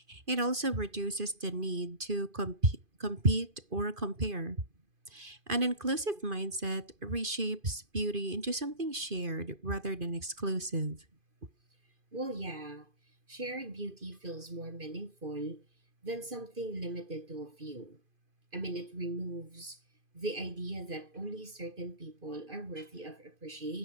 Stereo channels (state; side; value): late; left; 2.5 ms